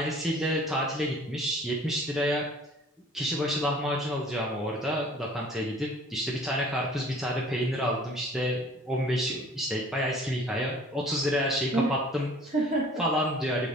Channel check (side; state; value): both; normal; correlation 0.50